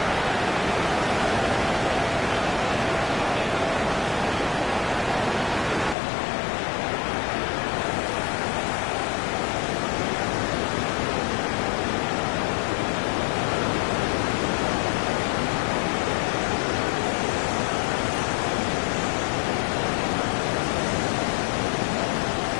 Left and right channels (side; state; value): right; drops out; at 6.0 s